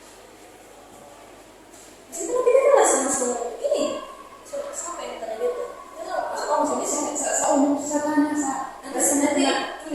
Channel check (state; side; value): identical; both; correlation 1.00